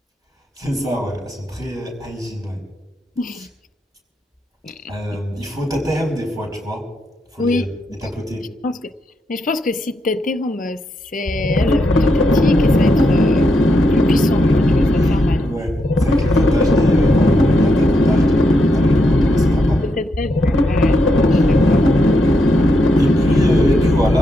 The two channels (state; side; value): normal; both; correlation 0.82